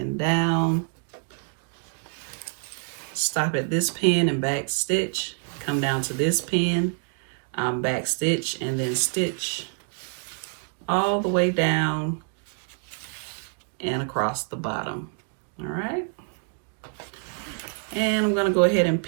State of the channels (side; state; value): left; silent; 55 dB below the other